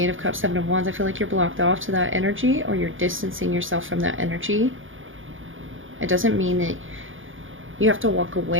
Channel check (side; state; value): left; late; 0.58 ms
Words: Eight of Cups, Seven of Wands, I feel like you're blocked off to that energy, or you're distancing yourself from that energy. It doesn't mean that you have to walk